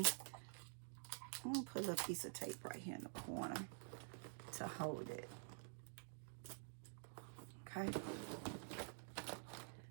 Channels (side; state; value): left; silent; digital silence